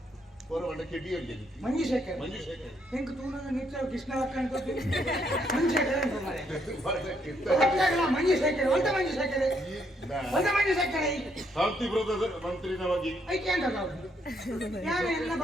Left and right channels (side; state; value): both; normal; correlation 0.73